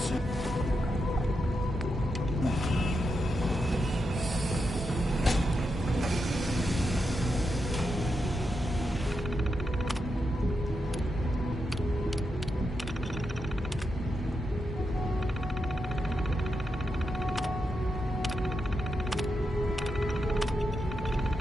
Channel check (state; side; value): normal; both; correlation 0.86